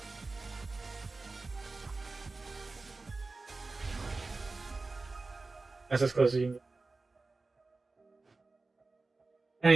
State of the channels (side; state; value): left; quieter; 3.6 dB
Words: That's as close as you can get. And